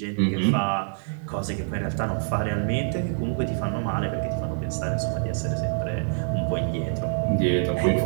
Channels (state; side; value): silent; left; digital silence